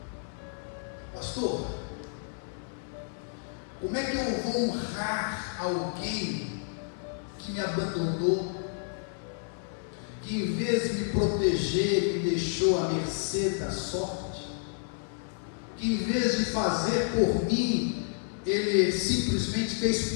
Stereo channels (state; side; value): silent; right; digital silence